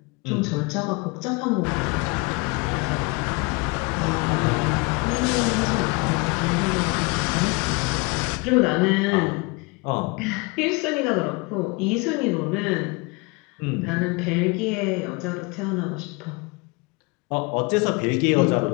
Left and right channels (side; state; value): right; quieter; 27.3 dB